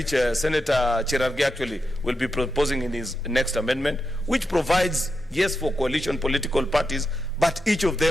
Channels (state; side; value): normal; both; correlation 0.87